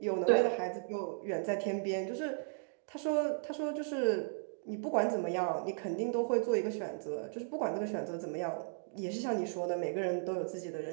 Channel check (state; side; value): silent; left; digital silence